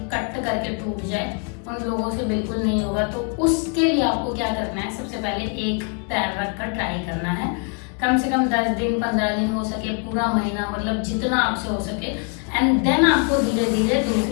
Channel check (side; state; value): right; quieter; 38.7 dB